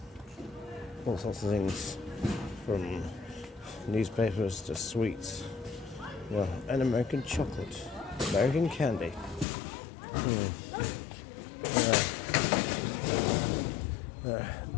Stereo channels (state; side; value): drops out; right; at 9.5 s